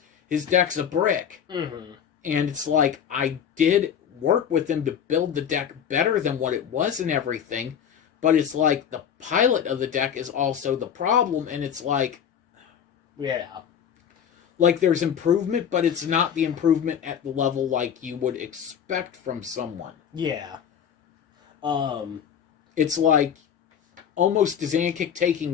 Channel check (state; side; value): quieter; right; 8.3 dB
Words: his deck's a brick. And it's like, I did work with him to build the deck better than what it was and everything, but it's like the pilot of the deck is also the problem, and it's like, like there's improvement, but it's not the improvement at the level like you would expect from someone. It's like almost Dzankic